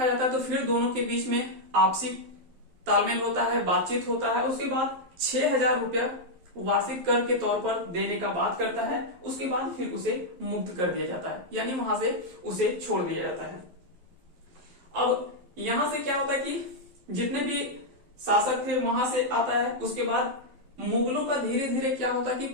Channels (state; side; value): late; left; 11 ms